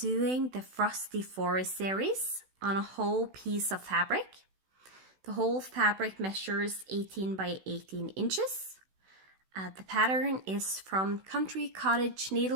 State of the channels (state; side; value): late; left; 16 ms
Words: the Frosty Forest series on a whole piece of fabric. The whole fabric measures 18 by 18 inches. The pattern is from Country Cottage